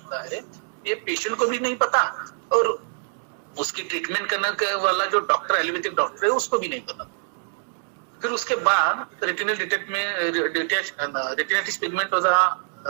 है, ये पेशेंट को भी नहीं पता और उसकी ट्रीटमेंट करने वाला जो डॉक्टर, एलोपैथिक डॉक्टर है, उसको भी नहीं पता। फिर उसके बाद रेटिनल रेटिनाइटिस पिगमेंटोजा,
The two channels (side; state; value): left; silent; digital silence